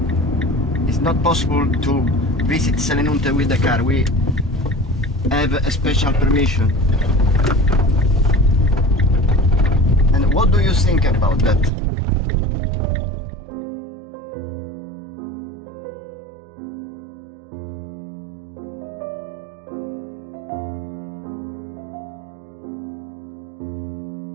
It's not possible to visit Selinunte with the car. We have a special permission. And what do you think about that?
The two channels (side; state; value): left; drops out; at 11.7 s